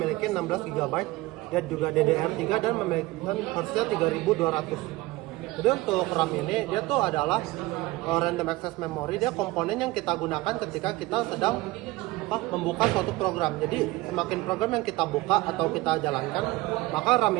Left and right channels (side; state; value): left; quieter; 19.9 dB